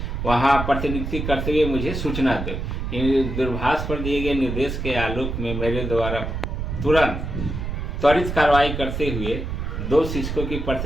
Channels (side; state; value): right; noise; rumble, 4 dB below the sound